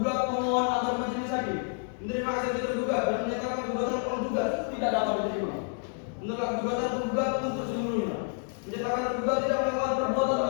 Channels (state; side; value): silent; right; 58 dB below the other